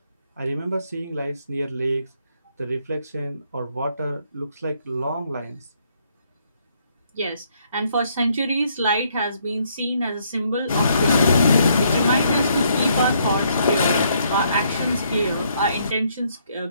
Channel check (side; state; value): both; inverted; correlation -0.70